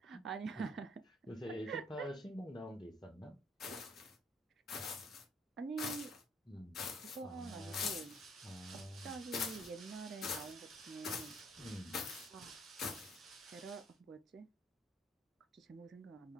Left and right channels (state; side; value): normal; both; correlation 0.63